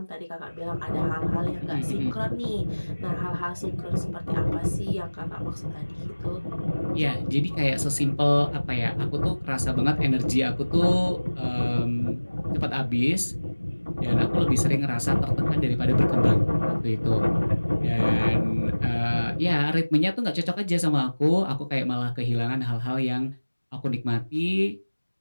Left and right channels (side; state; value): both; inverted; correlation -1.00